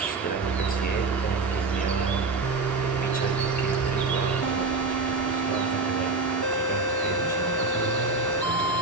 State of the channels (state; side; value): quieter; left; 3.7 dB